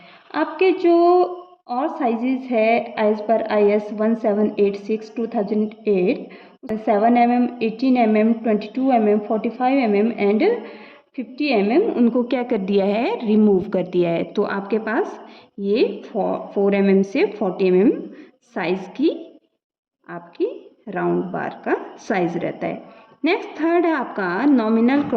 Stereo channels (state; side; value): identical; both; correlation 1.00